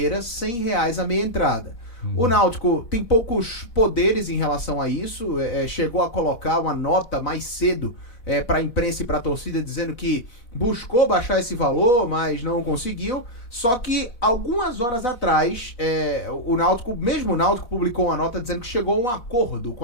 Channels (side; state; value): right; late; 4.1 ms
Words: R$100 a meia entrada. O Náutico tem poucos poderes em relação a isso, chegou a colocar uma nota mais cedo para a imprensa e para a torcida, dizendo que buscou baixar esse valor, mas não conseguiu. Só que algumas horas atrás, o Náutico publicou uma nota dizendo que chegou a um acordo com